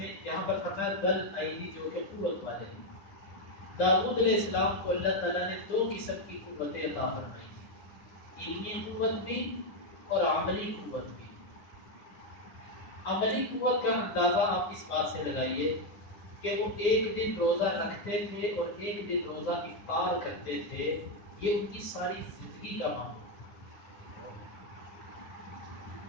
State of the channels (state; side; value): late; right; 9.9 ms